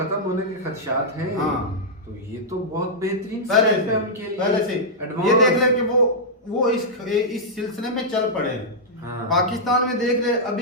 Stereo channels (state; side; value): normal; both; correlation -0.09